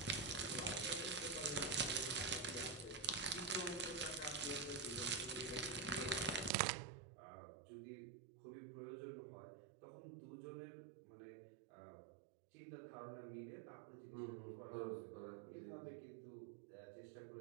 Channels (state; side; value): drops out; left; at 6.5 s